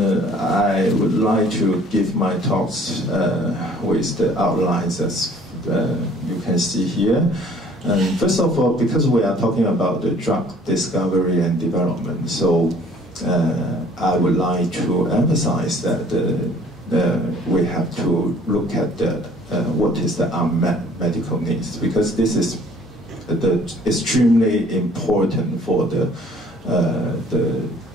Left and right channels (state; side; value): normal; both; correlation 0.55